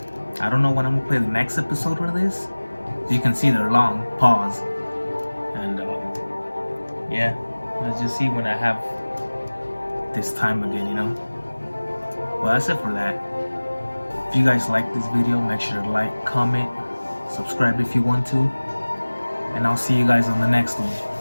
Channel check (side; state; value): both; inverted; correlation -1.00